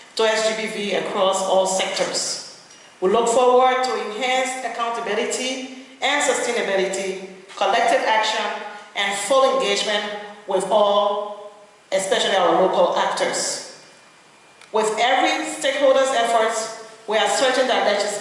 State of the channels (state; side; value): identical; both; correlation 1.00